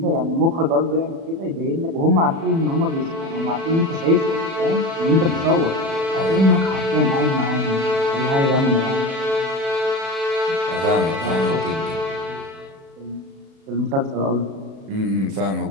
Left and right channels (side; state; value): left; late; 36 ms